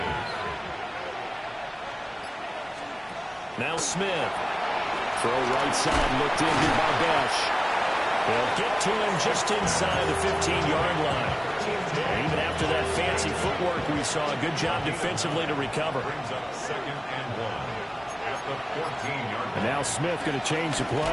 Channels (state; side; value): identical; both; correlation 1.00